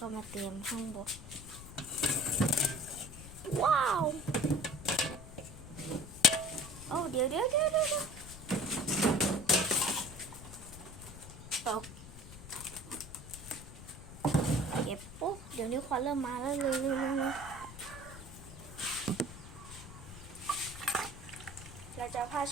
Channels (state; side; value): noise; left; rumble, 14 dB below the sound